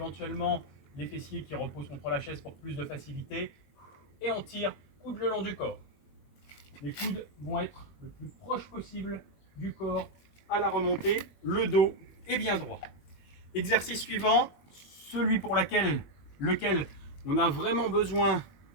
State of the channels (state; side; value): late; right; 21 ms